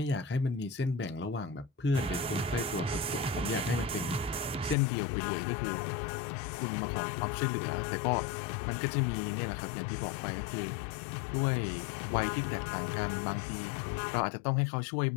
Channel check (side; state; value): right; drops out; at 4.8 s